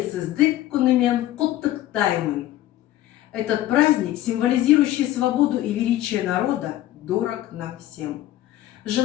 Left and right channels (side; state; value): right; quieter; 14.4 dB